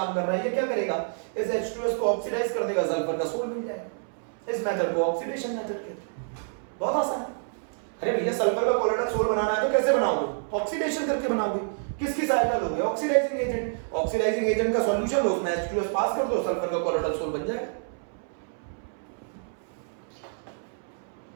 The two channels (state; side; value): silent; left; 60 dB below the other